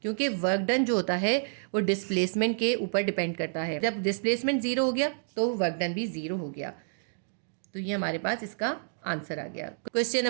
क्योंकि वर्क डन जो होता है वो डिस्प्लेसमेंट के ऊपर डिपेंड करता है। जब डिस्प्लेसमेंट 0 हो गया तो वर्क डन भी 0 हो गया। तो ये हमारे पास इसका आंसर आ गया। क्वेश्चन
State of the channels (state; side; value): silent; left; digital silence